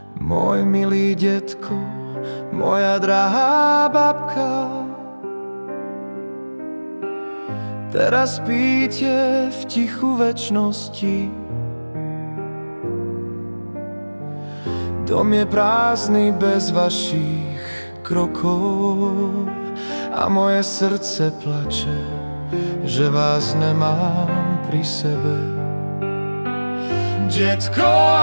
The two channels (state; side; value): inverted; both; correlation -1.00